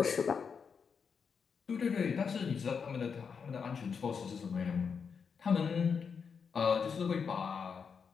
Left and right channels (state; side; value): quieter; right; 6.1 dB